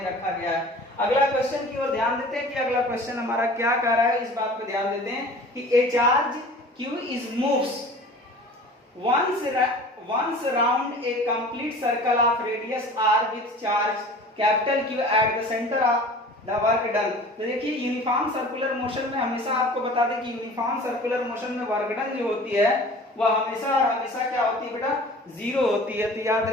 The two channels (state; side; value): normal; both; correlation 0.43